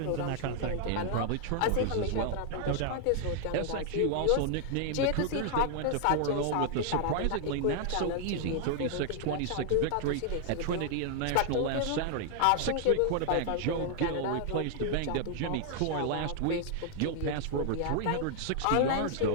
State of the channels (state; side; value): different; both; correlation 0.00